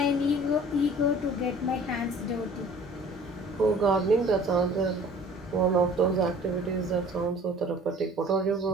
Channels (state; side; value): normal; both; correlation 0.49